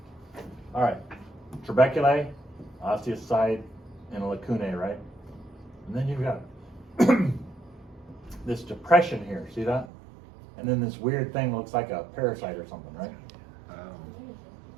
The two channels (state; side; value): drops out; left; at 9.9 s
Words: All right, trabeculae, osteocyte, and lacunae, right? And then you've got this depression here, see that? And then this weird thing looks like a parasite or something, right? Oh.